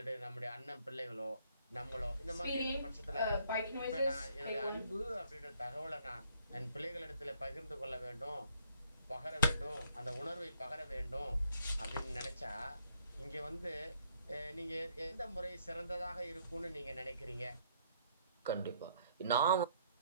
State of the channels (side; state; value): both; inverted; correlation -0.67